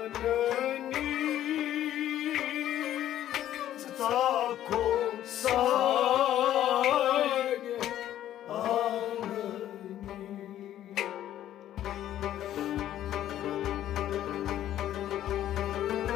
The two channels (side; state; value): right; quieter; 12.1 dB